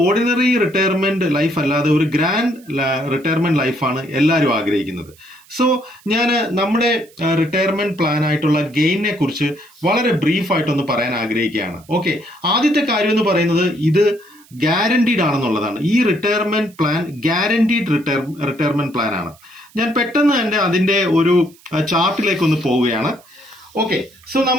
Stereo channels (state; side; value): noise; right; hiss, 27 dB below the sound